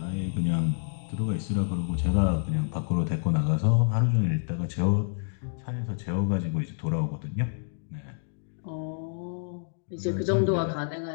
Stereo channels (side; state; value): right; silent; digital silence